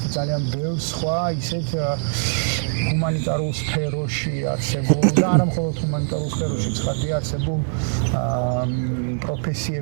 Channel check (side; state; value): left; silent; 64 dB below the other